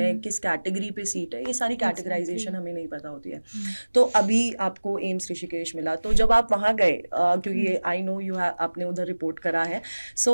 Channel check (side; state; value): both; inverted; correlation -1.00